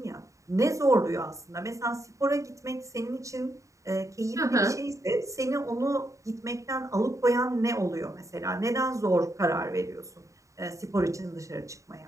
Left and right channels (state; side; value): late; left; 0.15 ms